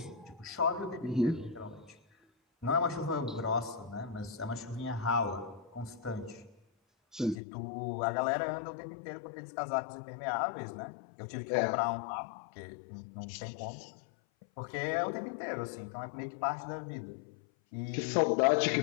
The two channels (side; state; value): right; drops out; at 7.4 s